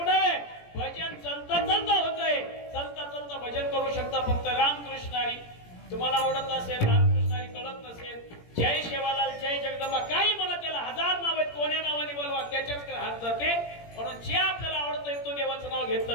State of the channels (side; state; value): right; late; 17 ms